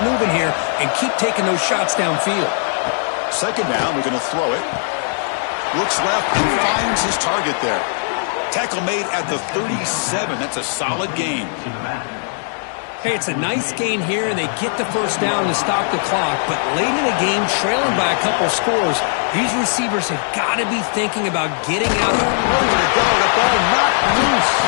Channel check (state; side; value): silent; right; digital silence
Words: moving here and keep taking those shots downfield. 2nd down, we're going to throw it. Looks left and finds his target there. Tackle made at the 37. That's a solid gain. Hey, it's a nice gain here, and they get the 1st down to stop the clock. But late in the game, trailing by a couple scores, these receivers have got to be thinking about getting out. Nowhere to go. The ball not loose.